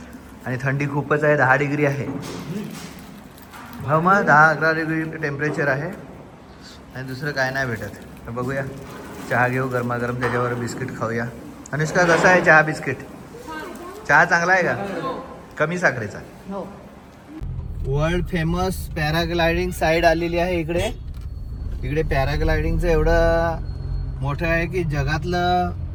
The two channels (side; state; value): both; identical; correlation 1.00